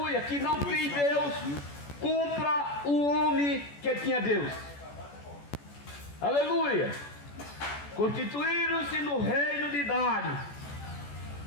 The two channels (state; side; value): late; right; 14 ms